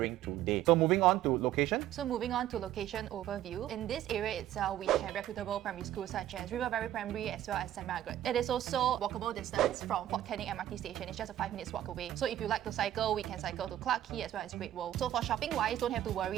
today. So moving on to location. So moving on to location overview. In this area itself, we have reputable primary schools such as River Valley Primary as well as St. Margaret. It is also walkable distance from Fort Canning MRT station. It's just a 5 minutes walk away. So if you like to cycle, we can cycle to Clarke Quay as well as Great World. So for shopping wise, don't have to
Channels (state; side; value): quieter; left; 12.6 dB